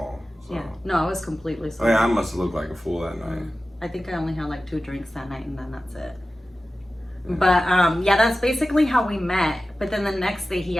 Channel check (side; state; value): both; normal; correlation 0.95